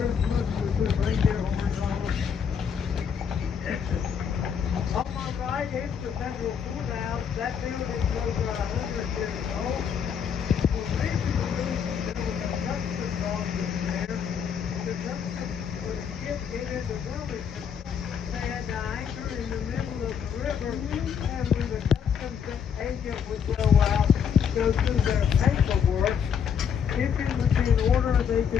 with reindeer horns on them. On my right is the Federal Courthouse. That building's over 100 years old. Originally, there was a customs office there. The customs was shipped into Wilmington. They had to anchor in the middle of the river, and when the customs agent would go out, go through their paperwork, if it was in order, they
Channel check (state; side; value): quieter; right; 7.4 dB